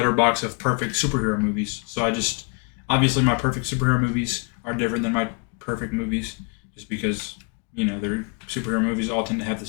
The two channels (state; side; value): quieter; right; 32.1 dB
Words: of perfect superhero movies. So obviously my perfect superhero movies are different than my perfect movies, just because their superhero movies all tend to have the